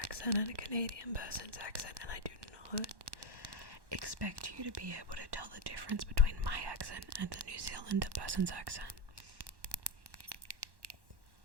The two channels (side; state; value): left; late; 1.1 ms